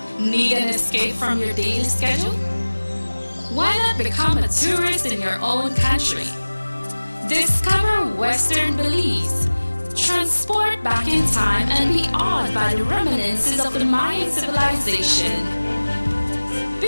Need an escape from your daily schedule? Why not become a tourist in your own country? Discover Western Belize. Transport back in time and be awed by the reminiscences of the Mayan civilization.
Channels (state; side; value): inverted; both; correlation -1.00